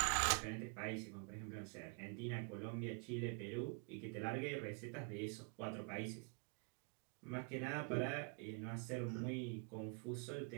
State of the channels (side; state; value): left; quieter; 36.4 dB